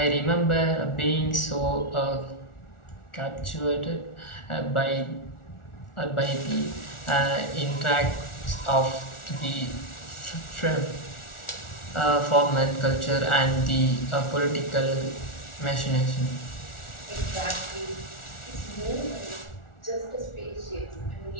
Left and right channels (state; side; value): late; right; 1.4 ms